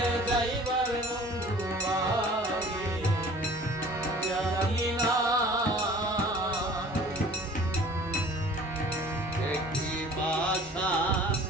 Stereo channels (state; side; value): normal; both; correlation 0.48